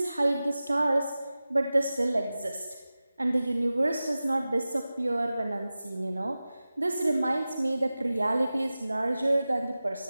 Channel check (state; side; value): inverted; both; correlation -0.96